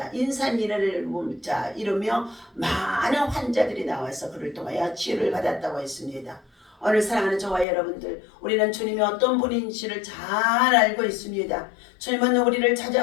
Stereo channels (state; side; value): drops out; right; at 7.7 s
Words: 인산이를 이루며 많은 환자들이 나와서 그를 통하여 치유를 받았다고 했습니다. 오늘 사랑하는 저와 여러분들, 우리는 주님이 어떤 분인지를 잘 알고 있습니다. 주님은 우리를